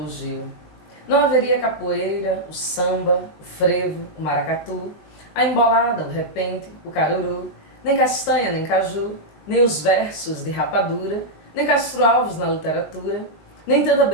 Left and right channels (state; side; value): late; right; 19 ms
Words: Gil. Não haveria capoeira, o samba, o frevo, o maracatu, a embolada, o repente, o caruru, nem castanha, nem caju, nem os versos de rapadura, nem Castro Alves na literatura, nem tanta